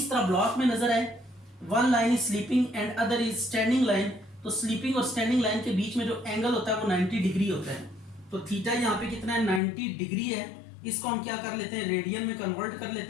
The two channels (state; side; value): drops out; right; at 9.6 s